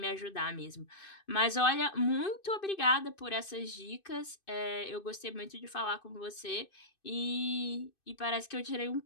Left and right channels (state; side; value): late; right; 2.6 ms